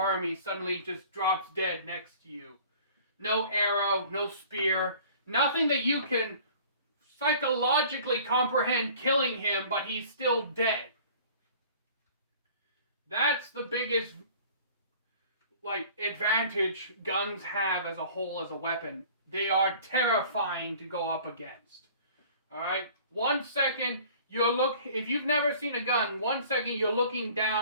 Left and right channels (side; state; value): both; inverted; correlation -0.48